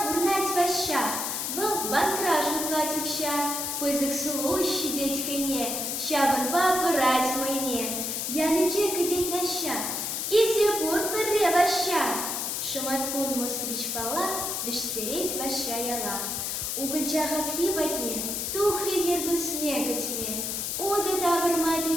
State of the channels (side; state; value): left; noise; hiss, 2 dB below the sound